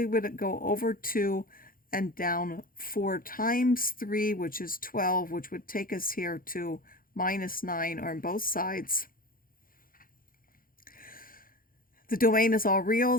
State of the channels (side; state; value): right; late; 0.41 ms